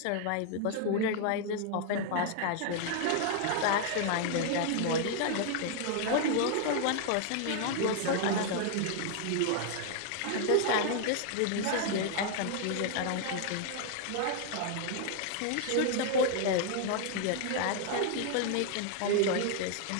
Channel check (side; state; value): both; different; correlation 0.00